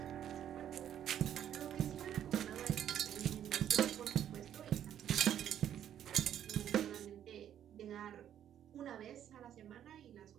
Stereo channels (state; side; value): quieter; left; 10.2 dB